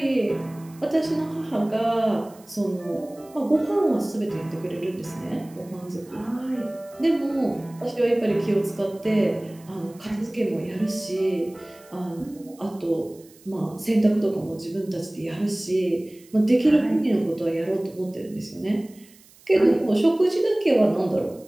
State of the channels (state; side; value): noise; right; hiss, 26 dB below the sound